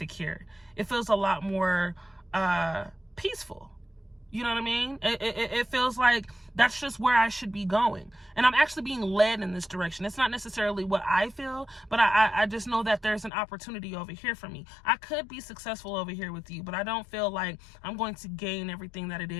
It feels a lot more peaceful. You know what I mean? It feels like that's just where I should be going. And I'm actually being led in this direction. It's not necessarily what I feel, but I just know that there's an opportunity over here for me. I could be successful over here with you, but I don't feel like I'm going to gain everything that it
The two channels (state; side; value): drops out; right; at 13.3 s